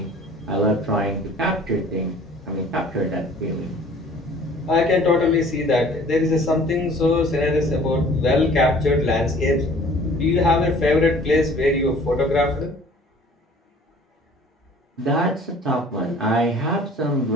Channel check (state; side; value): normal; both; correlation 0.50